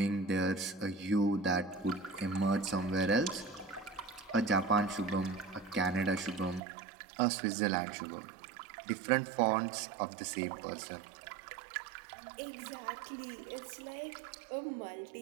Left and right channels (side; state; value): left; drops out; at 6.6 s